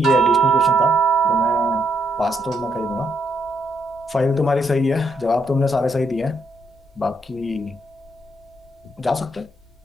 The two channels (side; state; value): both; normal; correlation 0.76